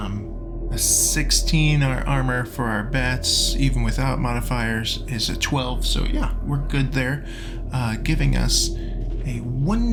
A 16 armor for our bats, even without modifiers, is a 12. So yeah, we're good there. Giving us a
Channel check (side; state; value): both; identical; correlation 1.00